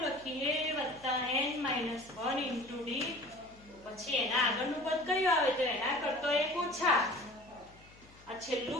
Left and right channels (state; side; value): noise; left; hum, 25 dB below the sound